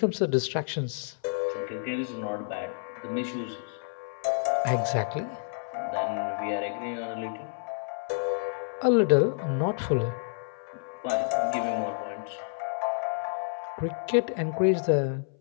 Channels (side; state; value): right; silent; 58 dB below the other